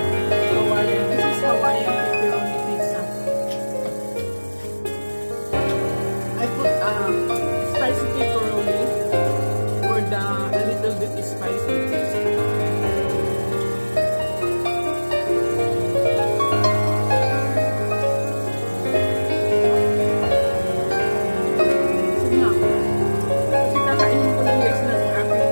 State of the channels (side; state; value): both; inverted; correlation -1.00